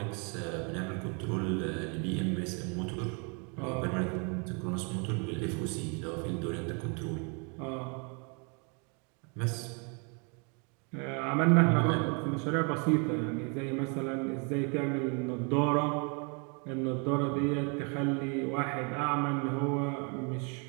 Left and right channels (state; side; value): quieter; left; 35.4 dB